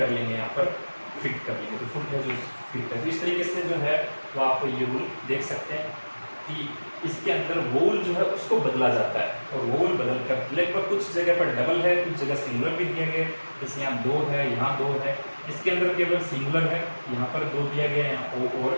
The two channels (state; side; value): inverted; both; correlation -1.00